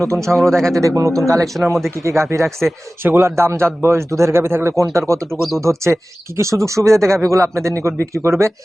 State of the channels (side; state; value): both; normal; correlation 0.97